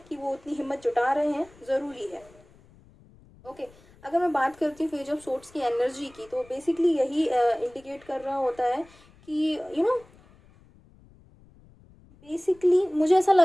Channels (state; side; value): noise; left; rumble, 27 dB below the sound